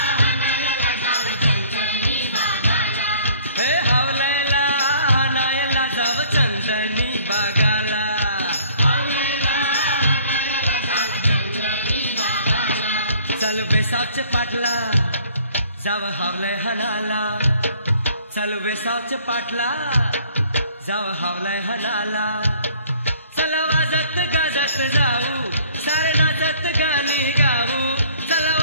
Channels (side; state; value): both; inverted; correlation -0.56